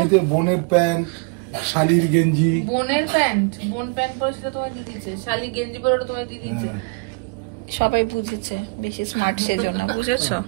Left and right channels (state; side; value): quieter; left; 31.8 dB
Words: এই যে বোনের প্যান্ট, শালির গেঞ্জি। বোনের প্যান্ট, বোন প্যান্ট পরে সেটা তোমায় দিয়ে দিচ্ছে, শালি গেঞ্জি পরে ওটা তোমায় দিয়ে দিচ্ছে। সবাই বুঝেছে, বেশি স্মার্ট সেজন্য, বুঝেছো?